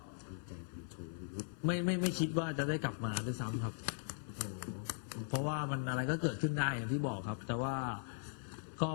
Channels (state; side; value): silent; right; 51 dB below the other